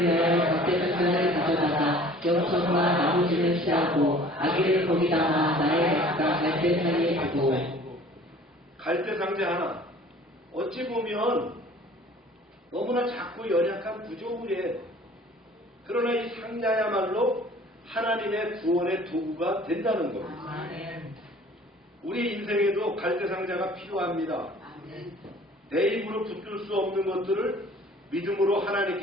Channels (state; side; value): normal; both; correlation 0.49